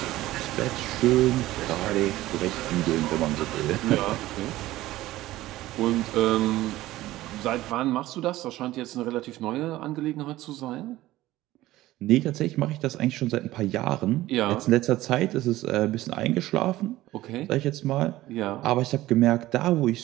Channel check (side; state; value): left; quieter; 16.3 dB